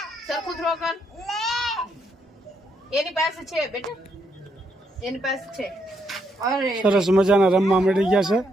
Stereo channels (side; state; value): both; normal; correlation 0.76